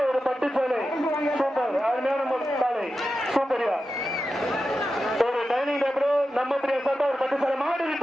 ஒரு பட்டு சேலை சூப்பர் அருமையான காலை சூப்பரியா ஒரு டைனிங் டேபிள் நம்ம பிரியா சாட்டா ஒரு பட்டு சேலை மாடு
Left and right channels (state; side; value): normal; both; correlation 0.91